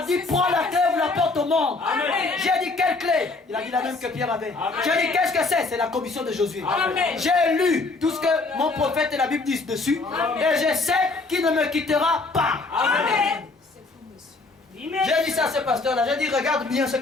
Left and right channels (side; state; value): right; quieter; 3.6 dB